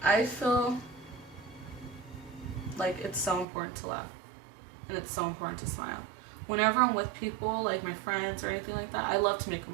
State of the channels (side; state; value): left; drops out; at 3.5 s